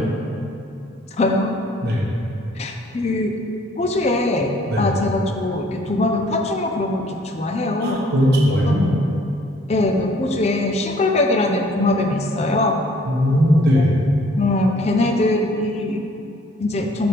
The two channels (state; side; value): normal; both; correlation 0.59